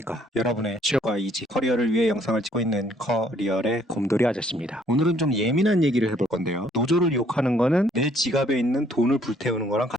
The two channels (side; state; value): both; normal; correlation 0.64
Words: 여러분의 취업과 이직, 커리어를 위해 영상을 찍고 있는 커리어의 곰돌이 아저씨입니다. 오늘은 좀 예민한 얘기를 해볼 건데요. 노조를 욕하는 거는 내 지갑에 있는 돈을 불태우는 거랑